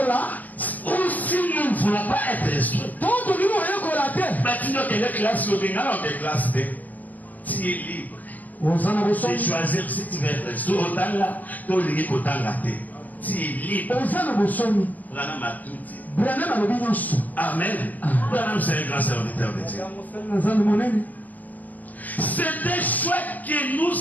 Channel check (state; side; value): late; right; 0.081 ms